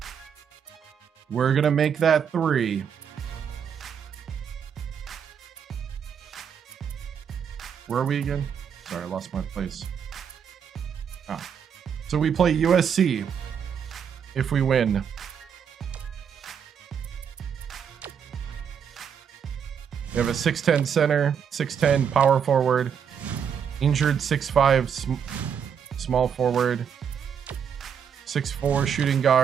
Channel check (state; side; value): quieter; left; 7.6 dB